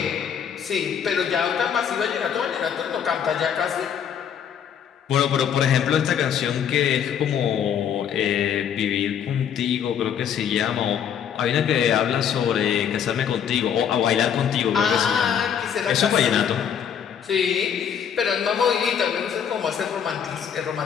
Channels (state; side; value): quieter; right; 8.3 dB